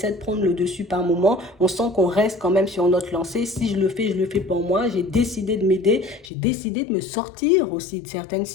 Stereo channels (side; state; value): right; drops out; at 6.3 s